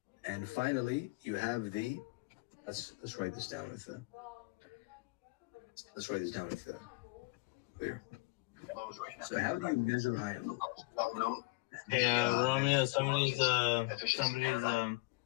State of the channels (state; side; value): quieter; right; 24.2 dB